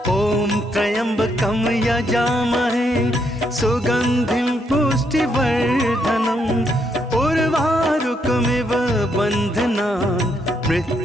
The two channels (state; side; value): normal; both; correlation 0.76